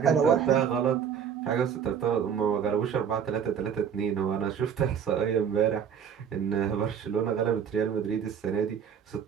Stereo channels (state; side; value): quieter; left; 7.8 dB